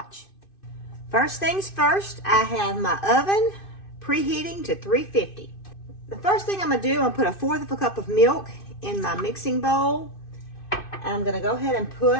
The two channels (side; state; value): right; late; 2.6 ms